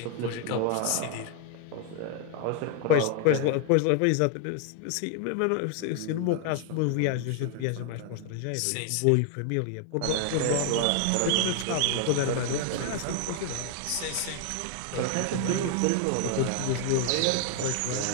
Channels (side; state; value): both; different; correlation 0.00